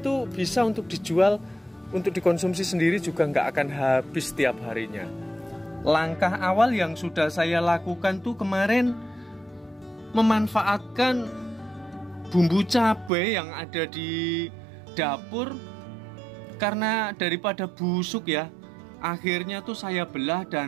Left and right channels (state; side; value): drops out; left; at 13.1 s